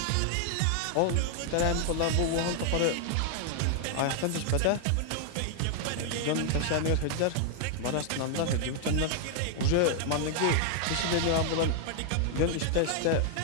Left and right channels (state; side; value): different; both; correlation 0.00